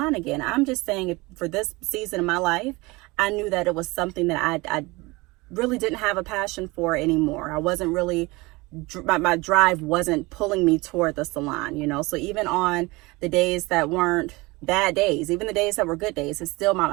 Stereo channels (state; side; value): quieter; left; 23.3 dB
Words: again. I'm just saying for this season of my life, I knew that it was something that I really didn't have a passion for anymore. I wasn't really, my drive wasn't pulling me toward the salon, So even on the days that weren't bad days, even the days that were good days, it's still